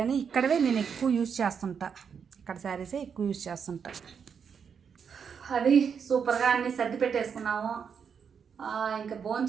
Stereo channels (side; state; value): left; quieter; 6.8 dB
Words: ఇక్కడవే నేను ఎక్కువ యూజ్ చేస్తుంటా. ఇక్కడ శారీసే ఎక్కువ యూజ్ చేస్తుంటా. అది సూపర్గా అన్నీ సర్ది పెట్టేసుకున్నాము. ఇంకా